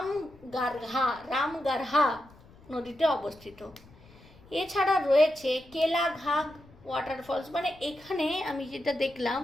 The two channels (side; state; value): left; noise; rumble, 24 dB below the sound